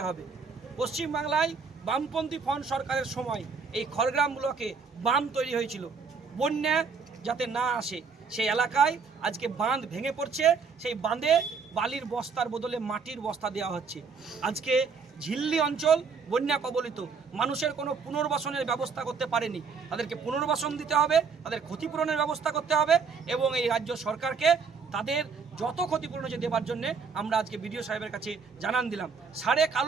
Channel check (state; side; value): quieter; left; 5.4 dB